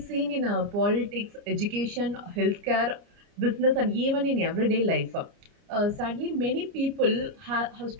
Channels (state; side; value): late; left; 29 ms